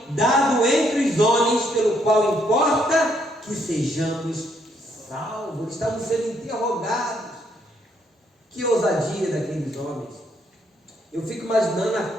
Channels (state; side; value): normal; both; correlation 0.72